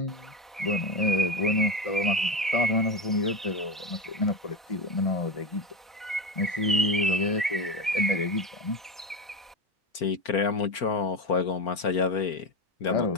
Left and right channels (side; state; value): both; normal; correlation 0.19